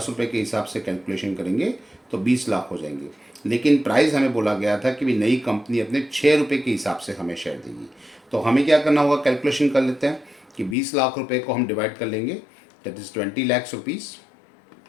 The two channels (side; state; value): right; drops out; at 10.8 s